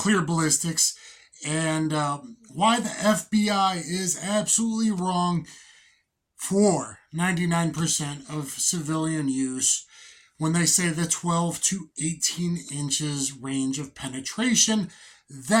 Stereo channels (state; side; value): identical; both; correlation 1.00